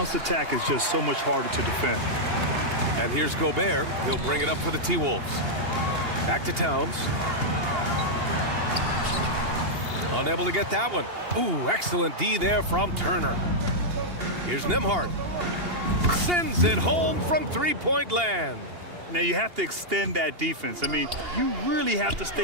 attack is just so much harder to defend. And here's Gobert. He'll bring it up for the T-Wolves. Back to Towns. Unable to get that one. Ooh, excellent D there from Turner. Here's Nembhard. Sends it home from three-point land. Now you have to extend that defense. I mean, you really have to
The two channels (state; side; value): late; left; 2.8 ms